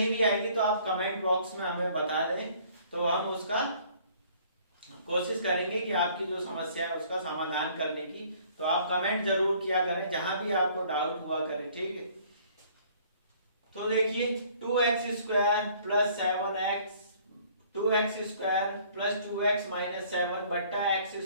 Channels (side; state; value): both; inverted; correlation -0.57